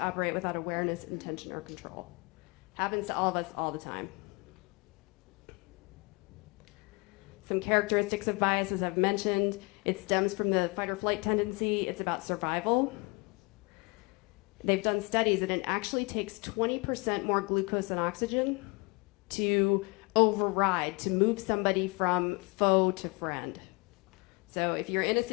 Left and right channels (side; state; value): right; quieter; 28.7 dB